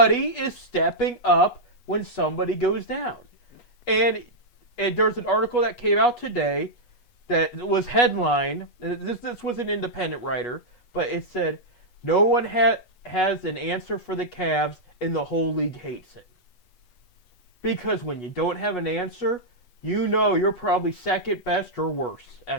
is stepping up when somebody goes down. And there's an article that came out today that was headlined. And this was an independent writer, but it said no one had has an answer for the Cavs, and the whole league hates it. Because when you don't have an answer, you know you're probably second best or worse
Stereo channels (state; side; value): late; right; 8.2 ms